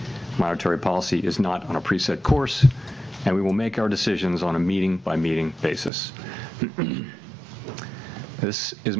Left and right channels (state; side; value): drops out; left; at 5.9 s